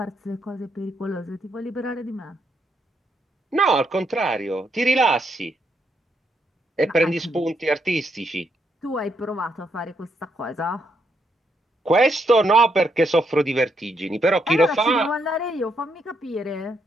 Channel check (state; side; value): normal; both; correlation 0.77